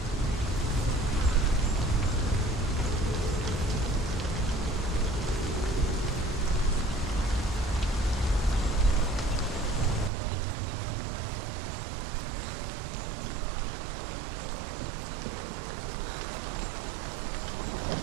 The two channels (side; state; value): left; drops out; at 10.1 s